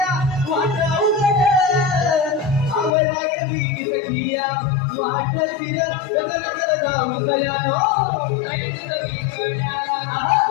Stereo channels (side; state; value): right; drops out; at 3.0 s